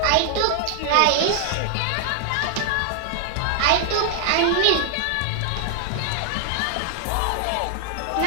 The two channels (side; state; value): both; different; correlation 0.00